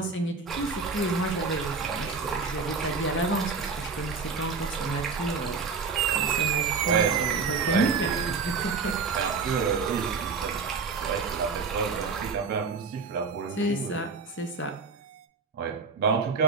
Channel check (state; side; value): quieter; left; 4.8 dB